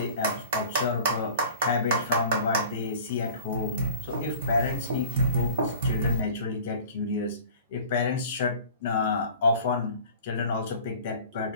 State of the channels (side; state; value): both; inverted; correlation -0.44